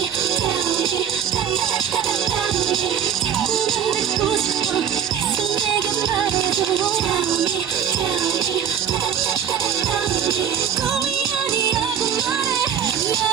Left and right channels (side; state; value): left; quieter; 8.4 dB